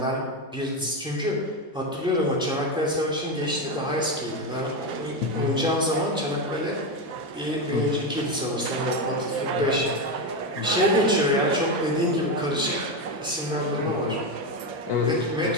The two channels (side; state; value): both; normal; correlation 0.12